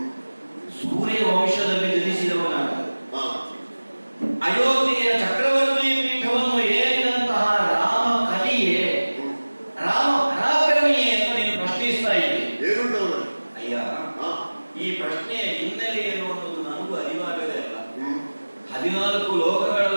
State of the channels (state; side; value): inverted; both; correlation -1.00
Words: ಸೂರ್ಯ ವಂಶದಲ್ಲಿ ಜನಿಸಿದವನಾಗ ಅಯೋಧ್ಯೆಯ ಚಕ್ರವರ್ತಿ ಪೀಠವನ್ನು ಏರಿದಂತಹ ರಾಮ ಕಲಿಯೇ, ರಾಮ ಪರಾಕ್ರಮಿಯೇ ಅಂತ ನೀನು ಪ್ರಶ್ನಿಸ್ತಾ ಇದ್ದಿ. ಅಯ್ಯ, ಈ ಪ್ರಶ್ನೆಯ ಹಿನ್ನೆಲೆ ಏನು ಅನ್ನೋದು ನನಗೂ ಅರಿವಾಗದೇ ಇಲ್ಲ. 14